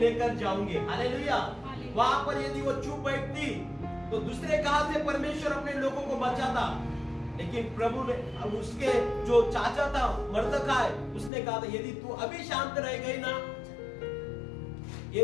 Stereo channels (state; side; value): drops out; right; at 11.3 s